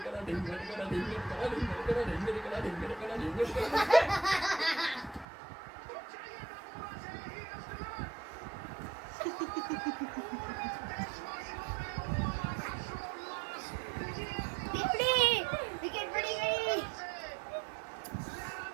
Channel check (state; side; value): drops out; left; at 5.2 s